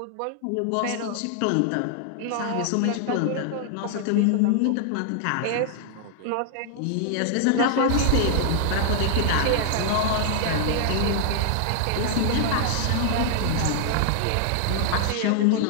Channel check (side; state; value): both; different; correlation 0.00